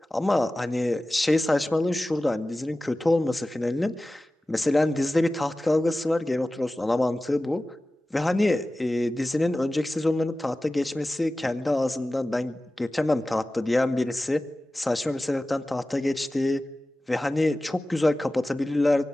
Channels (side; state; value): both; normal; correlation 0.96